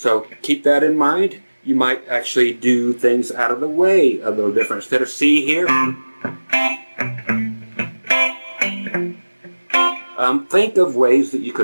keep that in mind. You might actually do things out of the way a little different. Instead of C here, think of ways that you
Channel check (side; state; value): both; inverted; correlation -1.00